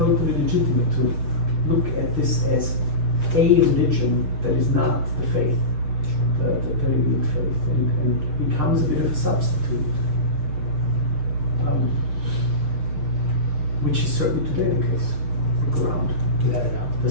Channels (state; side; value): late; left; 7.2 ms